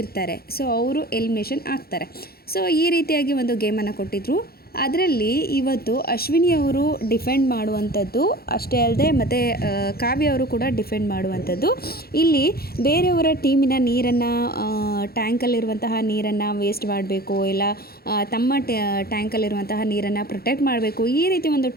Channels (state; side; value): late; right; 0.44 ms